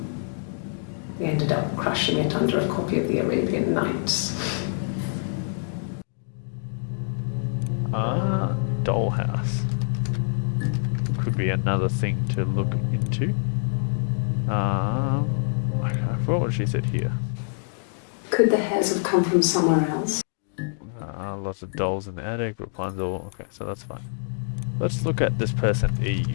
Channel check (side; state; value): right; silent; digital silence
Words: We ended up crushing it under a copy of the Arabian Nights. Dollhouse. Could be another thing to look into. I forgot what she said here. Could the hairs have come from somewhere else? Lots of dolls in the attic, Rapunzel. Okay, so that's fine. Let's look at this person,